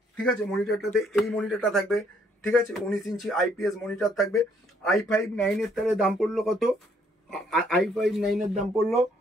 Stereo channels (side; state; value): both; normal; correlation 0.67